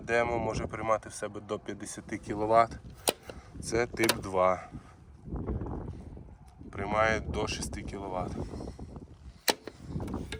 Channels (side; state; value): both; identical; correlation 1.00